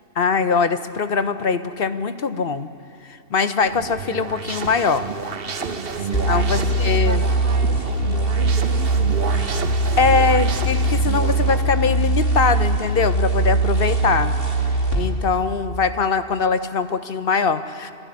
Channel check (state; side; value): late; right; 2.7 ms